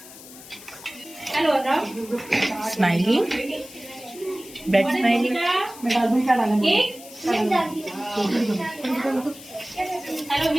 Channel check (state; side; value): noise; left; hiss, 17 dB below the sound